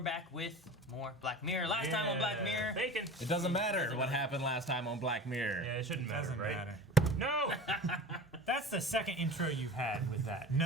back with more Black Mirror. Last time on Black Mirror. Bacon. It doesn't matter what happened last time on Black Mirror. Yeah, it shouldn't matter, Doesn't right? matter. No! That's the second intro you've had with that.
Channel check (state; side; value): normal; both; correlation 0.35